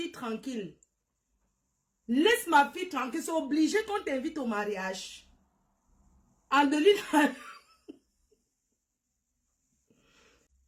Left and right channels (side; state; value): both; identical; correlation 1.00